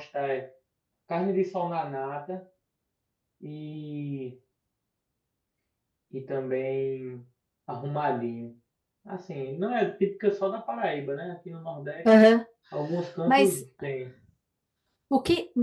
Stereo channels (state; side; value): identical; both; correlation 1.00